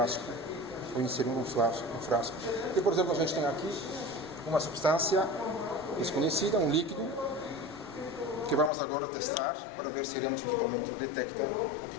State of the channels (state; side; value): drops out; right; at 8.7 s